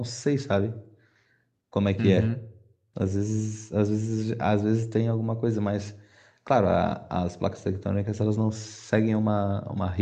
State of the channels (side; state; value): both; identical; correlation 1.00